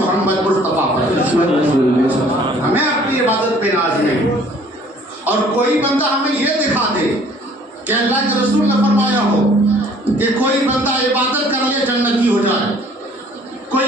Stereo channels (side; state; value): both; normal; correlation 0.56